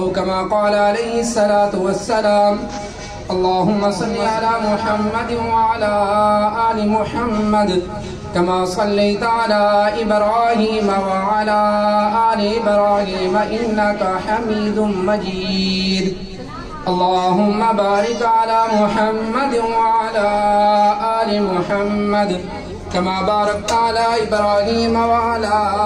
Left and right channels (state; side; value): identical; both; correlation 1.00